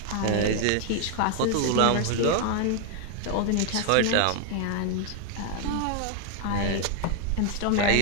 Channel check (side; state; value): both; different; correlation 0.01